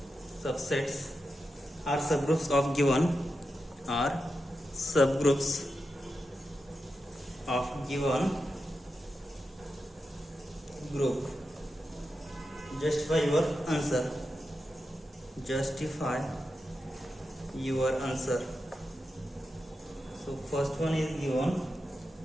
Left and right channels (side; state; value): both; normal; correlation 0.89